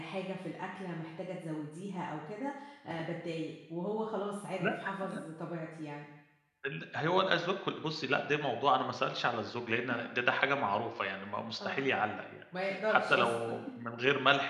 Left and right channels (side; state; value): both; identical; correlation 1.00